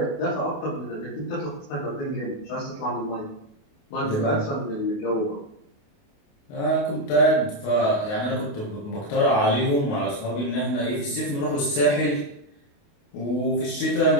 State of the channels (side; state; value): right; late; 28 ms